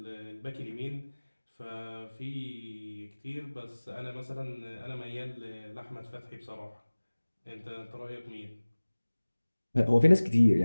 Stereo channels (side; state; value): both; inverted; correlation -1.00